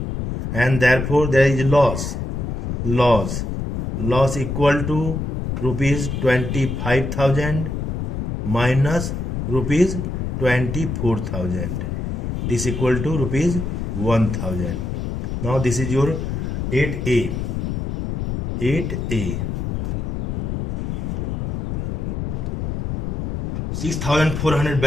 and therefore there is loss equal to rupees 25,000 minus rupees 24,000. This equal to rupees 1,000. Now this is your 8A. 6,400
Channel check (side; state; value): left; noise; rumble, 2 dB below the sound